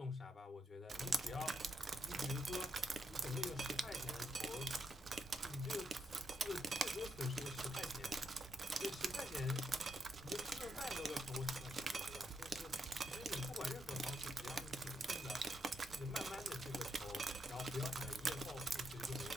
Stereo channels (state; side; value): normal; both; correlation 0.81